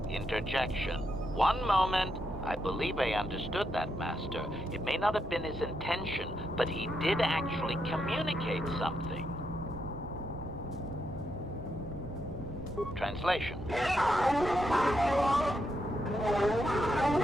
Interjection. One moment. I believe I understood that, Master. It may not have been his intention, but he did actually communicate something. Translation.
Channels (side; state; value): both; normal; correlation 0.81